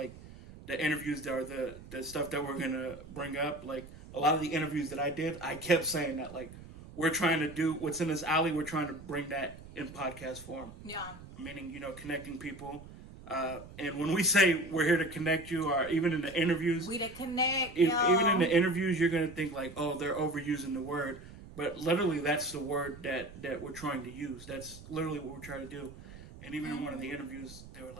the interviews that are the stuff that we're going to bring up, like a lot of the interviews that I did, I kept saying that like we're trying to do what's in this alley, we're trying to bring that in podcast form. Yeah. Meaning, connecting people. And when we say we're here to connect you, or even in the interviews, we to connect. Even in the interviews, you're going to think like, oh, they're overusing the word. But literally, that's the word that we're trying to use. That's literally what we're trying to do. And even in one of the interviews, they were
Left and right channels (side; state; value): right; noise; rumble, 16 dB below the sound